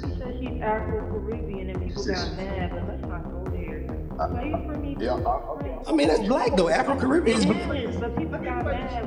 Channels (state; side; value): identical; both; correlation 1.00